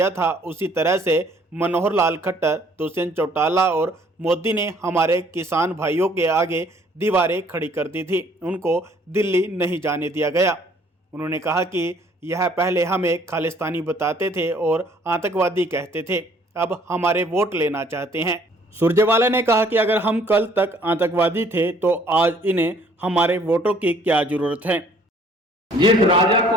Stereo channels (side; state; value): both; normal; correlation 0.60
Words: था, उसी तरह से मनोहर लाल खट्टर, दुष्यंत चौटाला और मोदी ने हमारे किसान भाइयों के आगे दीवारें खड़ी कर दी थी। उनको दिल्ली नहीं जाने दिया गया। उन्होंने कहा कि यह पहले हमें खालिस्तानी बताते थे और आतंकवादी कहते थे, अब हमारे वोट लेना चाहते हैं। सुरजेवाला ने कहा कि अगर हम कल तक आतंकवादी थे तो आज इन्हें हमारे वोटों की क्या जरूरत है। जिस राजा